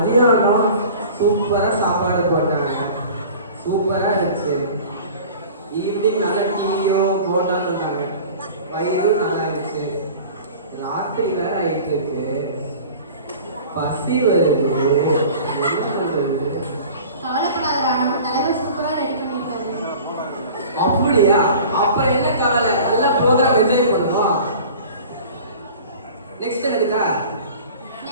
சூப்பரா சாப்பாடு போட்டாங்க, சூப்பரா இருந்துச்சு. ஈவினிங் நல்ல டீயும் போட்டான்னு இருந்தாங்க, வயிறும் நல்லா இருந்துச்சு. ராத்திரி வேற ஆயிட்டு இருக்கு, பசி வருது. என்ன பண்றது? கவலைப்படாதடா, நம்ம தலைவர் சூப்பரா ரெடி பண்ணிருக்காரு. அப்படியா? அப்புறம் என்ன கவலை, நல்ல ப்ரோக்ராம் என்ஜாய் பண்ணுவோம். நெக்ஸ்ட் என்னதுக்கா?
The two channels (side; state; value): both; inverted; correlation -0.42